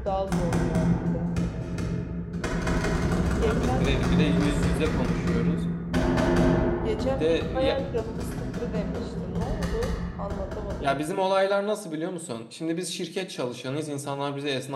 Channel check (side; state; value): both; identical; correlation 1.00